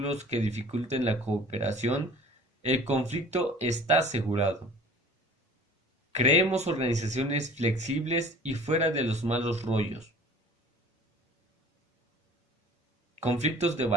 que dificulten la cooperación, el conflicto está asegurado. Creemos organizaciones flexibles y fuera de los malos rollos. Conflictos de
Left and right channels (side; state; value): both; normal; correlation 0.46